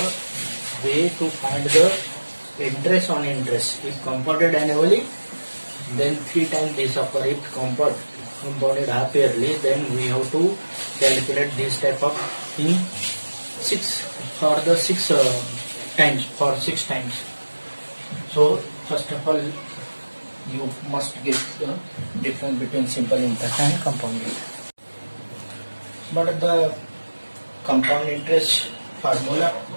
way to find the interest on interest. If compounded annually, then 3 times this upper. If compounded half yearly, then we have to calculate this type of in 6 for the 6 times, for 6 times. So first of all, you must get the difference between simple interest and compound interest. But the compound interest formula,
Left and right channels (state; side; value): inverted; both; correlation -1.00